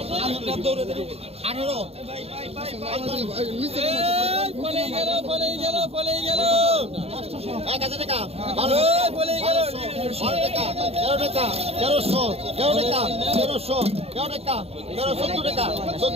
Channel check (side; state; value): left; late; 0.29 ms